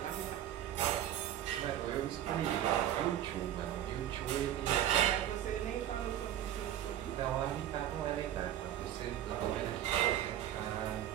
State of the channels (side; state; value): left; quieter; 11.5 dB